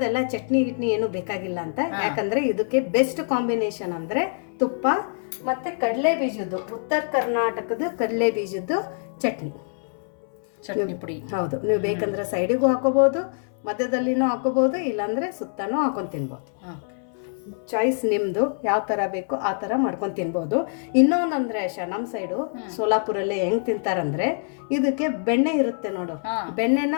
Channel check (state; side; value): silent; right; 62 dB below the other